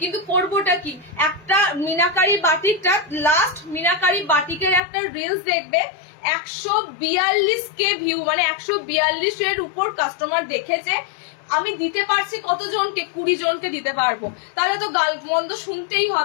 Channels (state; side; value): drops out; right; at 4.8 s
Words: কিন্তু করবোটা কি, একটা মিনাকারি বাটিকটা, লাস্ট মিনাকারি বাটিকের একটা রিলস দেখবে 142K ভিউ, মানে 142 এর উপর কাস্টমার দেখেছে। আমি দিতে পারছি কতজনকে, 20 জনকে দিতে পারবো, তাহলে তো গাল মন্দ শুনতেই